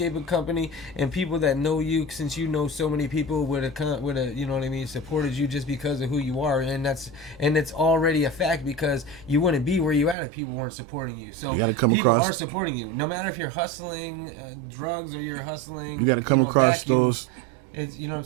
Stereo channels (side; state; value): left; drops out; at 10.2 s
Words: company, and people that know you, since you know so many people would have, you know what I mean, supported you just because of who you are, and it's already a fact because you wouldn't be where you at if people weren't supporting you. So people are supporting you, no matter if you're hustling drugs or you're hustling, you gotta come across vacuums. It's, you know what I'm